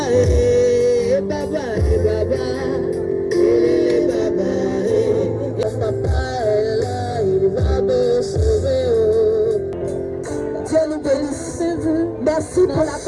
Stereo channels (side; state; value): both; identical; correlation 1.00